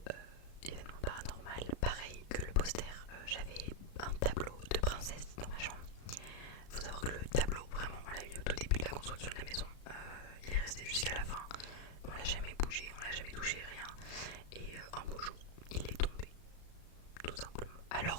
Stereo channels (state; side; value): late; right; 35 ms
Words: événement paranormal, pareil que le poster, j'avais un tableau de princesse dans ma chambre. Faut savoir que le tableau, vraiment, on l'a mis au tout début de la construction de la maison. Il est resté jusqu'à la fin. On l'a jamais bougé, on l'a jamais touché, rien. Et un beau jour, il est tombé, tout simplement.